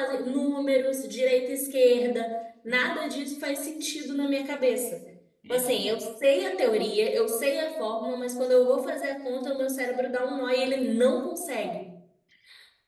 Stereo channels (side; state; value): both; identical; correlation 1.00